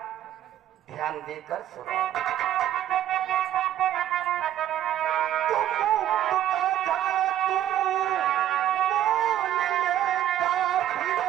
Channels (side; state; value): left; quieter; 11.9 dB